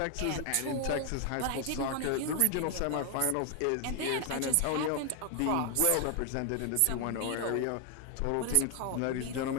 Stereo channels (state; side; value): different; both; correlation 0.00